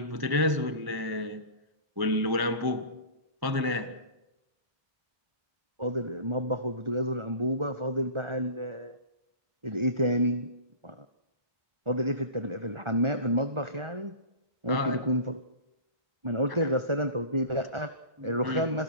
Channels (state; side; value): late; left; 1.1 ms